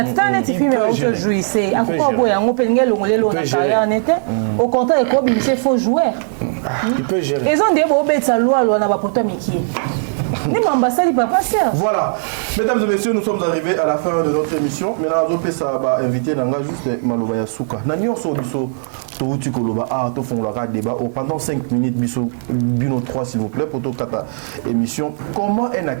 Au contraire, il faut jouer. Il peut gérer. Ils ont des bobets à loi, Voilà, mesdames et messieurs, nous sommes arrivés à la fin de notre émission. Maintenant, on va inviter juste Malobaya Souka. Nous sommes débat pendant 5 minutes, Bino 3 s'il vous plaît, pour toute émission. Comment un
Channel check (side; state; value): left; silent; digital silence